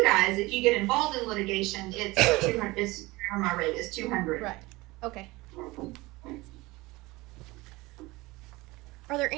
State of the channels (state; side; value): quieter; left; 21.4 dB